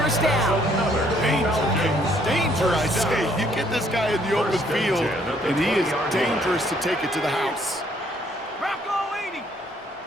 down. Danger, I say. You get this guy in the open field, and he is dangerous to take it to the house. Rocco 80.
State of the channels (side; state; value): both; normal; correlation 0.66